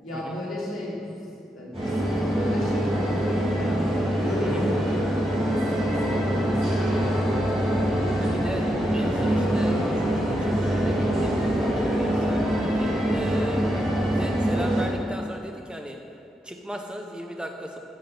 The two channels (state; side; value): normal; both; correlation 0.84